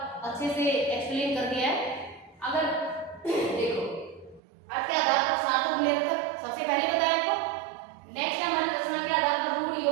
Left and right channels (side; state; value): left; drops out; at 4.4 s